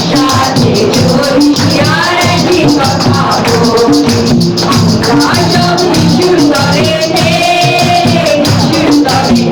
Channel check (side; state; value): both; identical; correlation 1.00